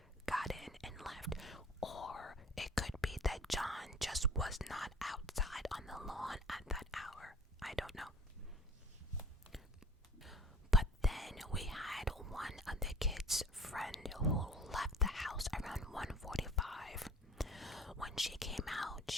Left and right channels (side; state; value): both; normal; correlation 0.46